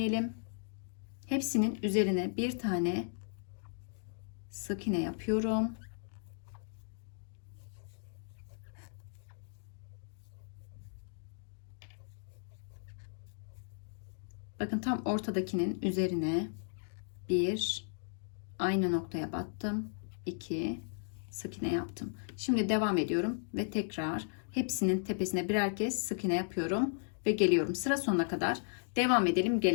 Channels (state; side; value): silent; right; digital silence